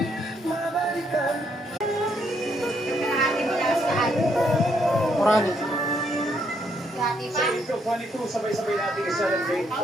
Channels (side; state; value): both; normal; correlation 0.73